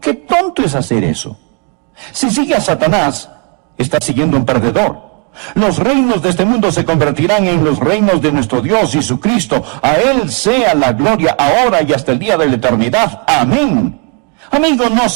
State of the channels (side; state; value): left; quieter; 35.3 dB